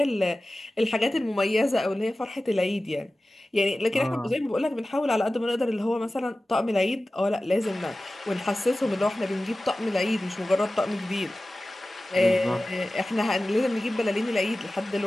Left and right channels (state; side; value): normal; both; correlation 0.96